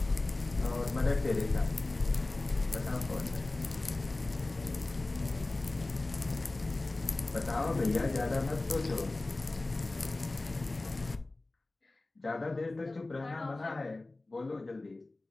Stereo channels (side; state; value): right; quieter; 3.0 dB